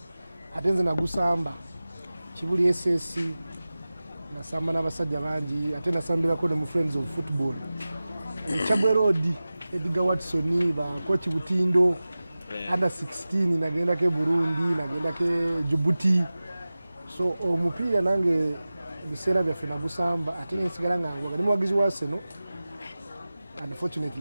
ate nze nagusamba Kibuli SS nasamba n'abasajja bangi ate nasambirako ne mu Friends of Football Chabwe Road Edgar Watson ba coach Butindo under 16 nagendako Burundi nagendako Djibouti. So omupiira nange biseera byaffe nagusamba ate nsigala nga wali muwagizi wa Arsenal.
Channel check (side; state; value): both; inverted; correlation -0.97